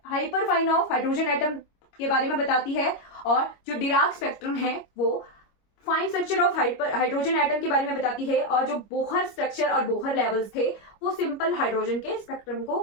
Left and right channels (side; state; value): right; late; 25 ms